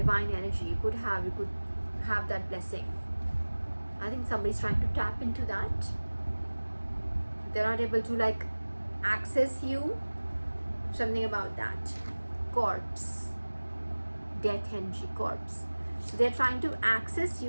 energy. You could have that blessing. I think somebody's trying to tap into that. They're not able to access you. Something about that. Corpse. Death energy, corpse. So they're trying to access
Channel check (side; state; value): both; inverted; correlation -1.00